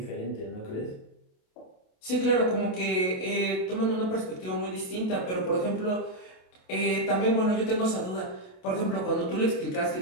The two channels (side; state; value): right; late; 27 ms